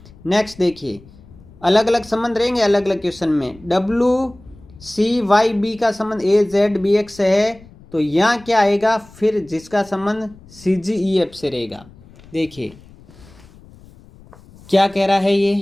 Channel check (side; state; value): left; noise; rumble, 23 dB below the sound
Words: नेक्स्ट देखिए, अलग अलग संबंध रहेंगे अलग अलग क्वेश्चन में। WCYB का संबंध AZBX से है, तो यहाँ क्या आएगा फिर जिसका संबंध CGEF से रहेगा? देखिए क्या कह रहा है